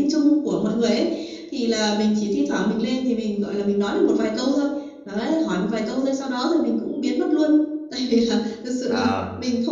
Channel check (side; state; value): both; identical; correlation 1.00